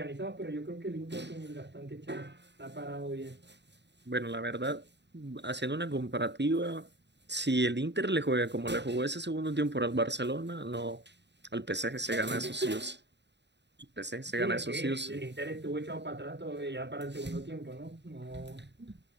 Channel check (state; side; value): late; left; 0.51 ms